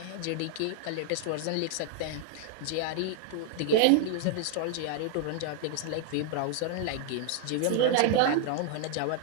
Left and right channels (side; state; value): both; different; correlation 0.00